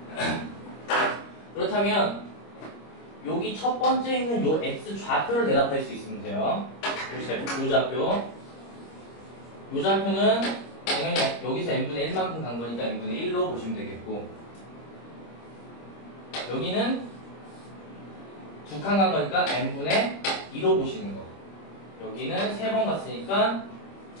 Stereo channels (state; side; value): late; right; 26 ms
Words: 그렇다면 여기 첫 번째 있는 요 x좌표를 대답할 수 있으면 돼요. 요 좌표는 당연히 여기서 n분의 1만큼 간 거니까 n분의 1로 보시면 되겠고, 여기는 두 칸 간 거니까 n분의 2로 보시는 거. 여기는 3번 갔으니까